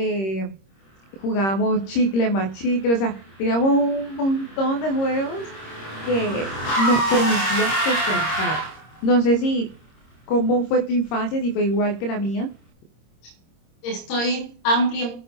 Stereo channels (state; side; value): late; right; 26 ms